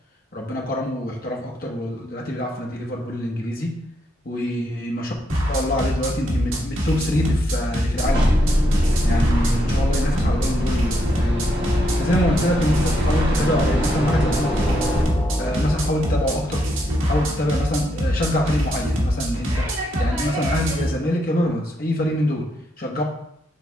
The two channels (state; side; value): normal; both; correlation 0.79